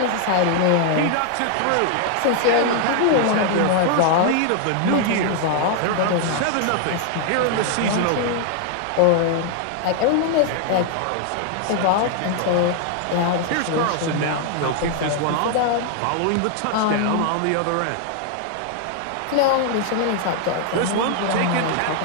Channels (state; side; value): different; both; correlation 0.00